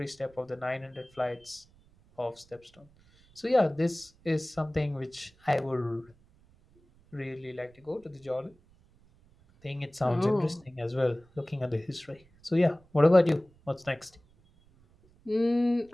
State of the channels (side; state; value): right; noise; rumble, 29 dB below the sound